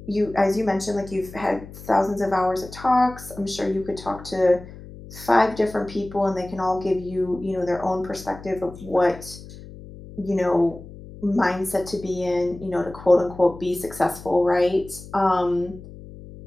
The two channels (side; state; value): left; noise; hum, 16 dB below the sound